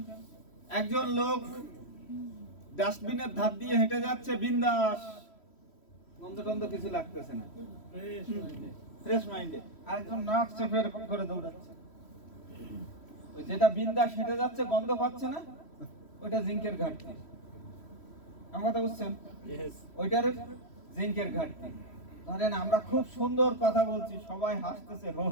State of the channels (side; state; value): right; late; 3.1 ms